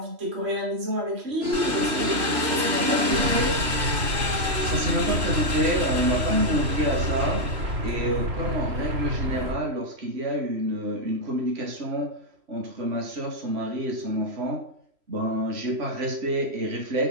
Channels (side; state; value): left; late; 3.0 ms